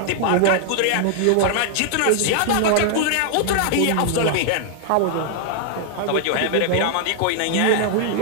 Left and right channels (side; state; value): both; different; correlation 0.00